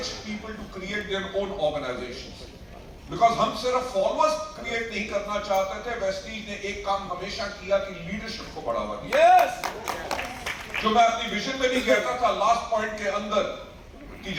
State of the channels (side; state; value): both; identical; correlation 1.00